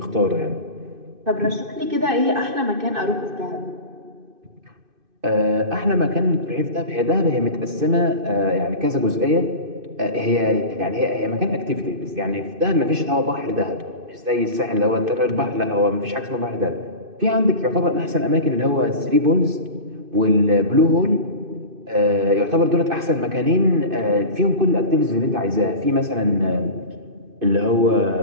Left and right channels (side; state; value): left; late; 2.6 ms